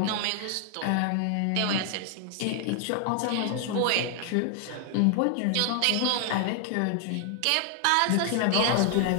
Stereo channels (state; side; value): different; both; correlation 0.00